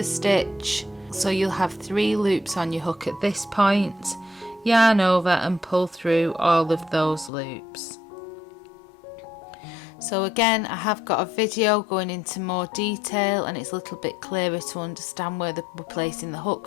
stitch. So you'll have 3 loops on your hook at this point. Yarn over and pull through all of those loops. So again, I have got a video going into more detail and it's a little bit clearer to understand where we're placing the hook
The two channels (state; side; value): drops out; right; at 7.3 s